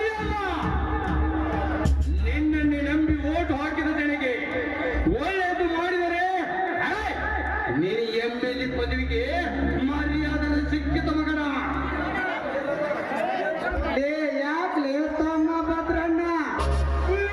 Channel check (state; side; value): identical; both; correlation 1.00